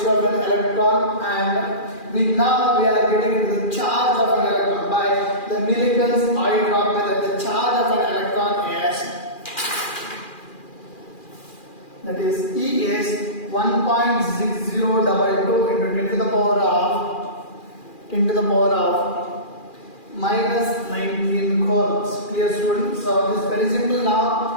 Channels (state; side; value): late; right; 2.4 ms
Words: of an electron, and now we are getting into the charge of an electron by the Millikan's eye drop method. The charge of an electron is, that is E is 1.6022 into 10 to the power of minus 19 coulombs. Clear students? So this is very simple